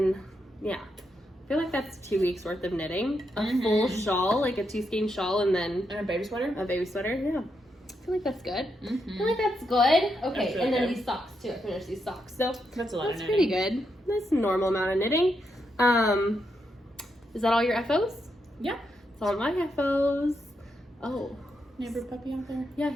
yeah. I feel like that's 2 weeks worth of knitting. A full shawl, like a 2-skein shawl, and then... And a baby sweater? A baby sweater, yeah. I feel like that's good. I feel like that's good. Okay, really and then good. these socks, too. I finished these socks. So That's a lot of that's knitting. pretty good. That's a normal amount of knitting. Is that all your FOs? Yeah. It's all my FOs. Oh. Neighbor puppy out there? Yeah,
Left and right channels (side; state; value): both; normal; correlation 0.82